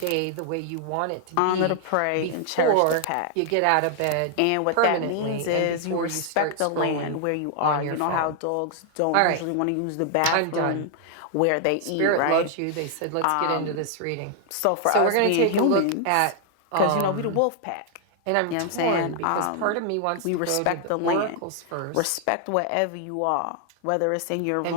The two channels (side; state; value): both; different; correlation 0.00